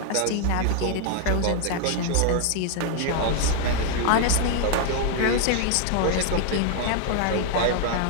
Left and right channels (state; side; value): different; both; correlation 0.00